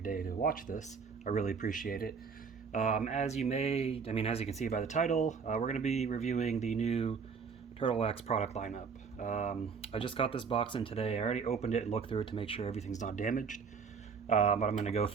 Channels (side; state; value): left; quieter; 5.7 dB